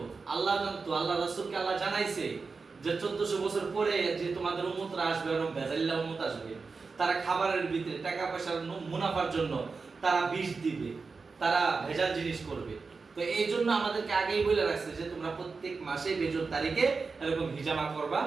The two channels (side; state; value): left; quieter; 4.5 dB